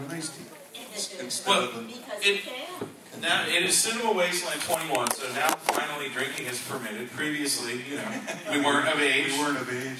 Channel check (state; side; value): identical; both; correlation 1.00